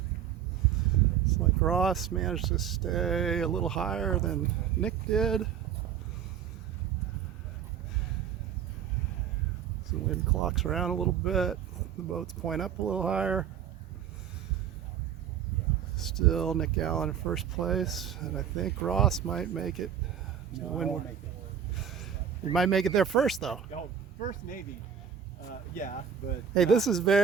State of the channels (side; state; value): left; quieter; 8.6 dB